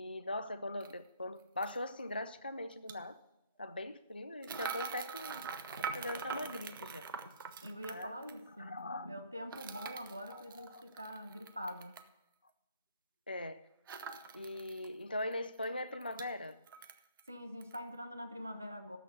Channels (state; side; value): inverted; both; correlation -0.59